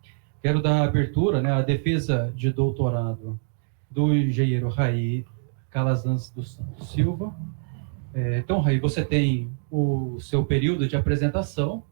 Quero dar abertura, à defesa de doutorado do engenheiro Raí Calazans dos Santos Silva. Então, Raí, você tem o seu período de apresentação.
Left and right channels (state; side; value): silent; left; 62 dB below the other